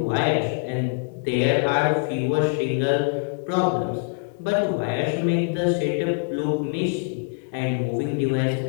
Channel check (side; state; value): right; quieter; 35.9 dB